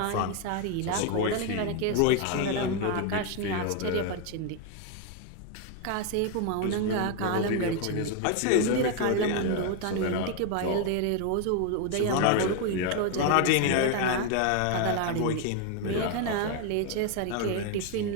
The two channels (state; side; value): different; both; correlation 0.01